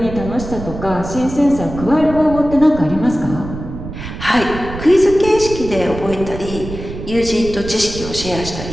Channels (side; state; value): right; noise; rumble, 10 dB below the sound